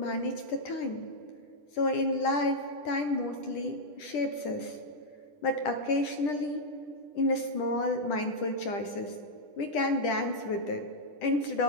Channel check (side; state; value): right; late; 10 ms